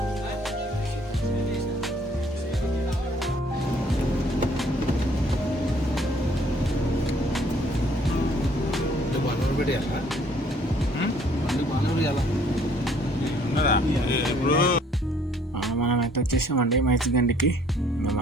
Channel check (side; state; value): both; normal; correlation 0.61